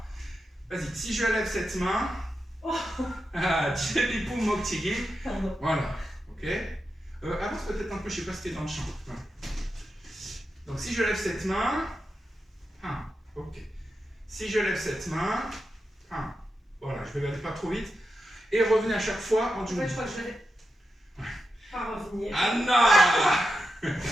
Vas-y, si je lève cette main, Jebby poum mokchigi. Voilà, ok. Avance peut-être un peu, je ne sais pas si tu es dans le champ. Voilà. Donc, si je lève cette main, ok. Si je lève cette main, voilà, je vais aller pas trop vite. Et revenez à chaque fois en dessous. Je crois que je vais pas revenir. Anna.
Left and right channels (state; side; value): normal; both; correlation 0.89